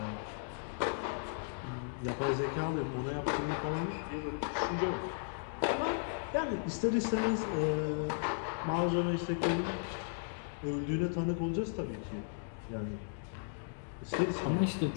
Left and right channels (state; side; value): silent; right; digital silence